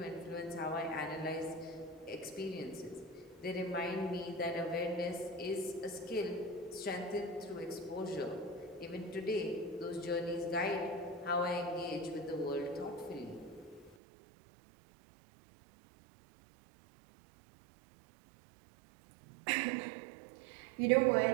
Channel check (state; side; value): drops out; left; at 14.0 s